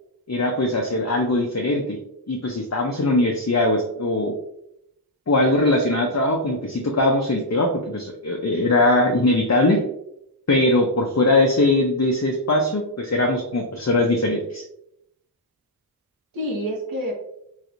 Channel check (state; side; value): normal; both; correlation -0.06